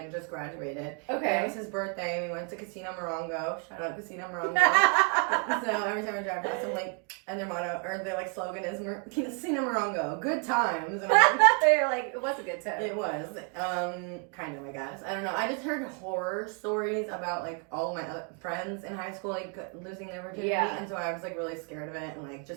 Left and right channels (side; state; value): left; quieter; 36.8 dB